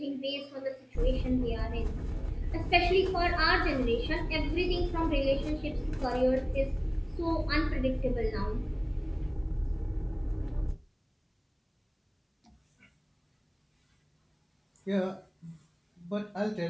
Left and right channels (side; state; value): both; identical; correlation 1.00